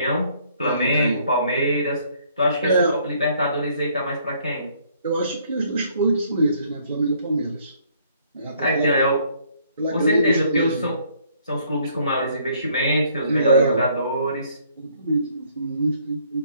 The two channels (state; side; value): inverted; both; correlation -0.64